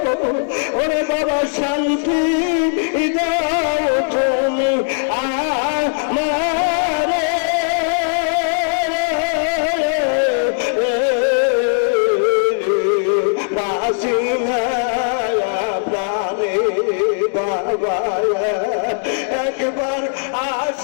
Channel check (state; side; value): silent; right; digital silence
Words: ওরে বাবা শান্তি দাও তুমি আমারে, বাসি প্রাণে বাবা একবার